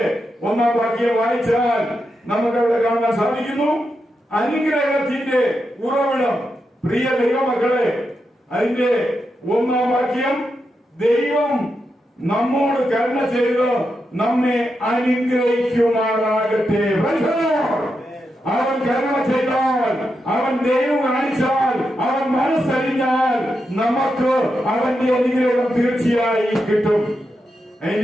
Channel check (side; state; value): both; normal; correlation 0.86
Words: 1-ാം വാക്യം വായിച്ചാൽ നമുക്ക് അവിടെ കാണാൻ സാധിക്കുന്നു. അനുഗ്രഹത്തിന്റെ ഉറവിടം. പ്രിയ ദൈവമക്കളെ, അതിന്റെ 1-ാം വാക്യം, ദൈവം നമ്മോട് കരുണ ചെയ്ത് നമ്മെ അനുഗ്രഹിക്കുമാറാകട്ടെ. അവൻ കരുണ ചെയ്താൽ, അവൻ ദൈവം കാണിച്ചാൽ, അവൻ മനസ്സറിഞ്ഞാൽ നമുക്ക് അവന്റെ അനുഗ്രഹം തീർച്ചയായും കിട്ടും.